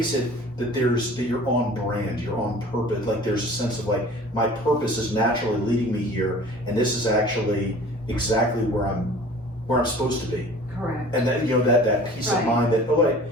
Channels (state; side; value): normal; both; correlation 0.45